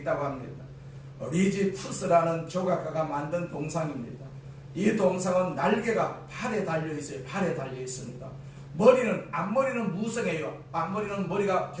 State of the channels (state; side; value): identical; both; correlation 1.00